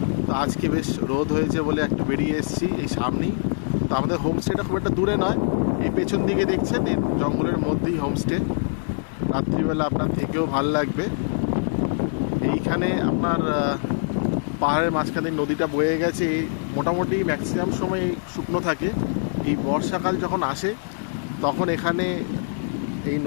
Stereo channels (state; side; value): silent; right; digital silence